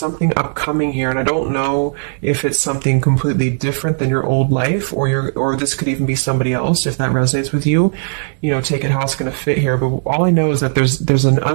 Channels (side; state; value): left; silent; digital silence